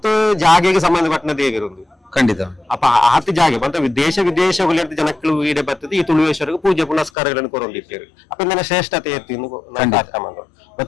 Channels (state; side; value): drops out; right; at 7.1 s